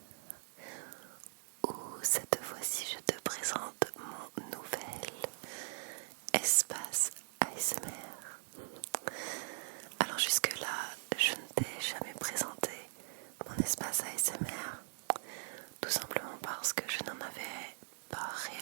où cette fois-ci je te présente mon nouvel espace ASMR. Alors jusque-là, je ne t'ai jamais présenté mon espace ASMR, tout simplement parce que je n'en avais pas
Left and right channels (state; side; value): silent; left; digital silence